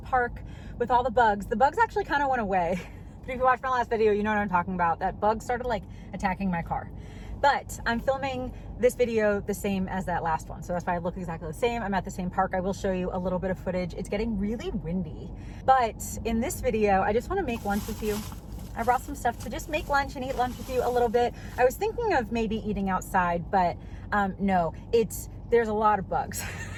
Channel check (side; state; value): both; identical; correlation 1.00